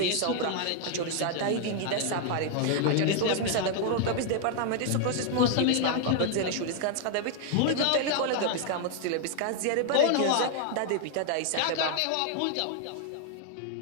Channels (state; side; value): different; both; correlation 0.00